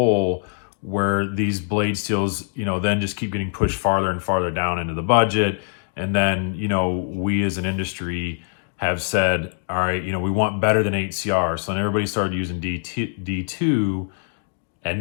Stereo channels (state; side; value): silent; right; digital silence